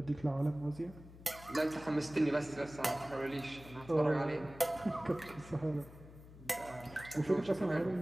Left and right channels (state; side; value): noise; left; hum, 18 dB below the sound